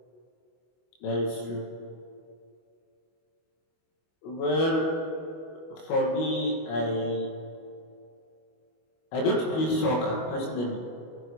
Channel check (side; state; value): right; late; 25 ms